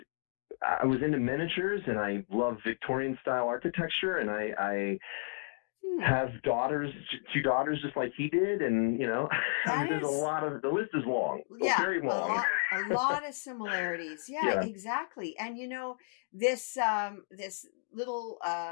I was into miniatures and I love Victorian style architecture, and I Hmm. have two daughters just like he did, and I That mean, is, the list is long, yeah, very long. a lot of similarities. Yeah, Yeah, exactly. And this little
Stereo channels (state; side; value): silent; right; digital silence